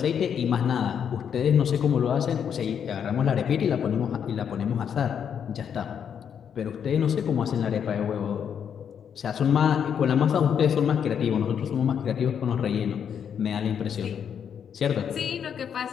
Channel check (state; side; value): quieter; right; 8.0 dB